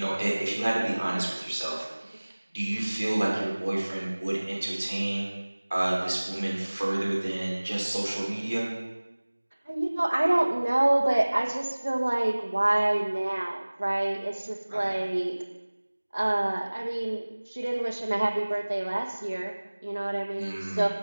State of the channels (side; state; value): both; inverted; correlation -1.00